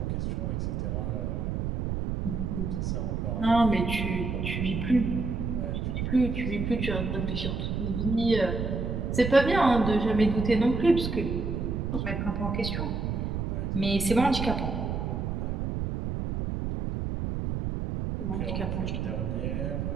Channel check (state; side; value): noise; right; rumble, 2 dB below the sound